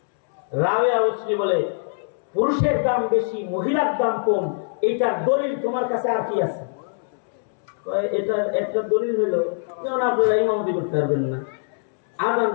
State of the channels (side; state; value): right; silent; 63 dB below the other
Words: রাবেয়া বসরি বলে পুরুষের দাম বেশি, মহিলার দাম কম। এইটার দলিল তোমার কাছে আর কি আছে? এটা একটা দলিল হলো, যেমন আপনারা ইমামতি করতে পারবেন না, আজান